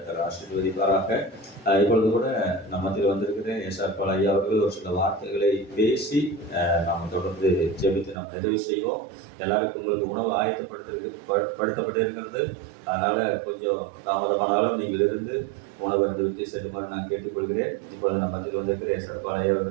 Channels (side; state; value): left; drops out; at 8.2 s